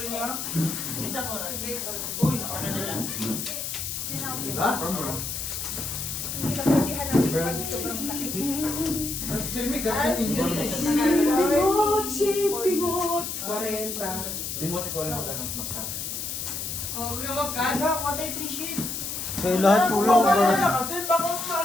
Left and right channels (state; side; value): noise; left; hiss, 4 dB below the sound